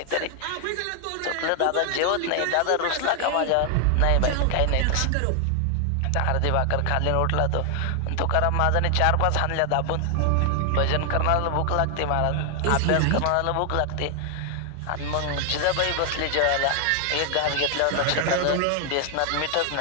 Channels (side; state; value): both; different; correlation 0.00